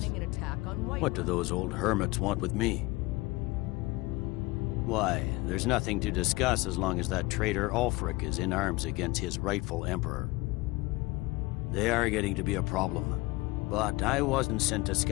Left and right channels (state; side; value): quieter; right; 21.8 dB